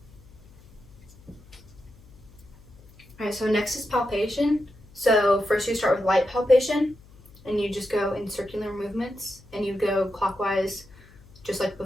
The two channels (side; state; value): left; noise; hum, 24 dB below the sound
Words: Alright, so next is palpation. So first you start with light palpation, and you just go in circular movements, and you go clockwise just like